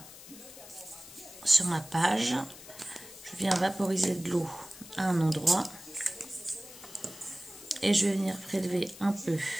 page. Je viens vaporiser de l'eau à un endroit. Et je vais venir prélever un peu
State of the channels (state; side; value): noise; left; hiss, 17 dB below the sound